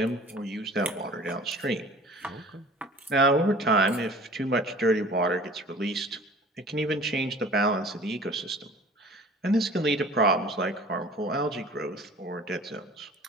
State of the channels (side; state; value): both; normal; correlation 0.45